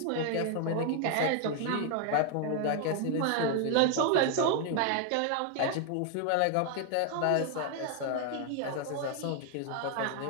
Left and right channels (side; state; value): both; different; correlation 0.01